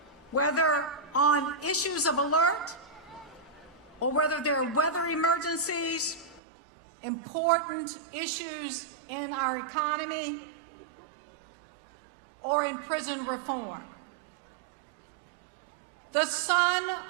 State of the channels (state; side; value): drops out; left; at 6.4 s